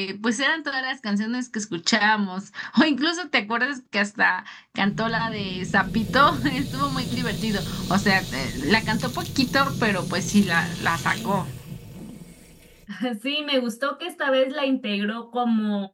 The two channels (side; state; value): both; identical; correlation 1.00